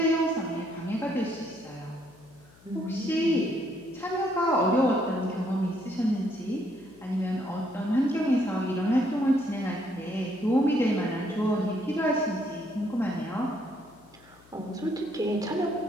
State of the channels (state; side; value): noise; left; hum, 27 dB below the sound